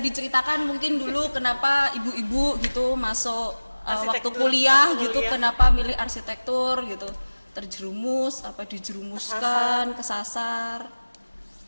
mungkin dulu kenapa ibu-ibu gitu masuk waktu Arsitektur, kuliah waktu gitu, kuliah. kenapa milih arsitektur gitu? Terjerumus apa dijerumuskan, kesasar?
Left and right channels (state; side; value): inverted; both; correlation -1.00